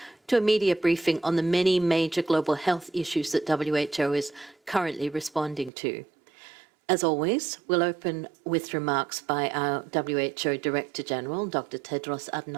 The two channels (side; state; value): left; drops out; at 5.7 s